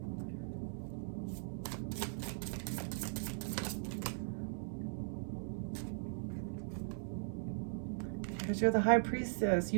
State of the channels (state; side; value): silent; left; 52 dB below the other